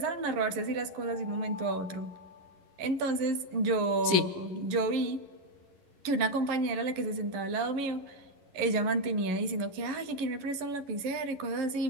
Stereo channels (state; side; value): late; left; 11 ms